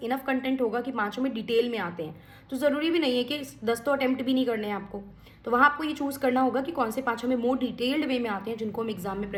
इनफ कंटेंट होगा कि 5 में डिटेल में आते हैं. तो ज़रूरी भी नहीं है कि 10 तो अटेम्प्ट भी नहीं करने हैं आपको. तो वहाँ आपको ये चूज़ करना होगा कि कौन से 5 हमें मोर डिटेल्ड वे में आते हैं जिनको हम एग्जाम में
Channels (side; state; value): both; identical; correlation 1.00